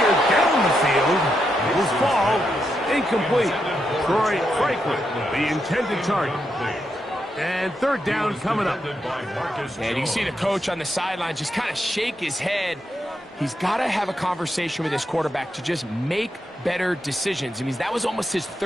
down the field, it will fall, incomplete. Troy Franklin, the intended target. And 3rd down coming up. And you can see the coach on the sideline just kind of shake his head. He's got to have a conversation with his quarterback to just make better decisions. I mean, that was almost his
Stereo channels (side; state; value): both; normal; correlation 0.83